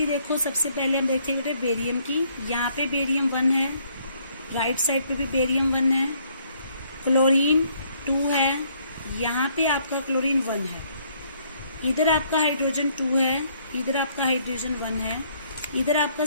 देखो, सबसे पहले हम देखते हैं बेरियम की। यहाँ पे बेरियम 1 है, राइट साइड पे भी बेरियम 1 है, क्लोरीन 2 है, यहाँ पे आपका क्लोरीन 1 है, इधर आपका हाइड्रोजन 2 है, इधर आपका हाइड्रोजन 1 है, इधर आपका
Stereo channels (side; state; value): both; inverted; correlation -0.66